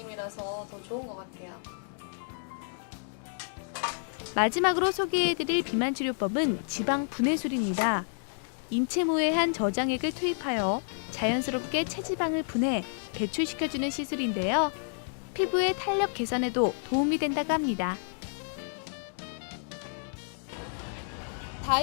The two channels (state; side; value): silent; right; digital silence